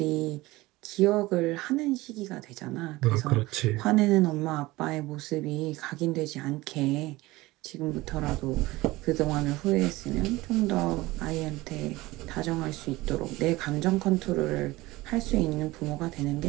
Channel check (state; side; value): quieter; left; 19.7 dB